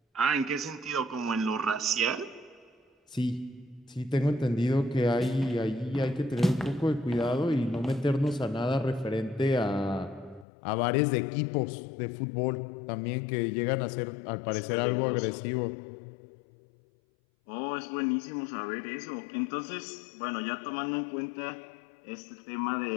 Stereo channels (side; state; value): right; drops out; at 10.5 s